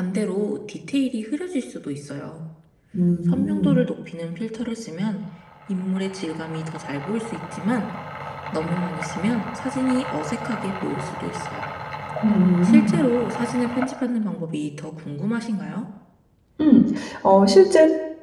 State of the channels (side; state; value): both; identical; correlation 1.00